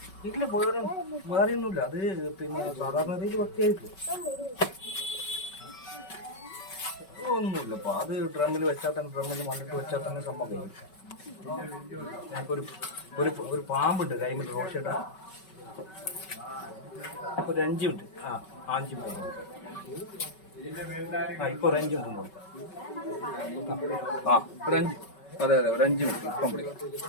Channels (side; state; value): right; late; 5.3 ms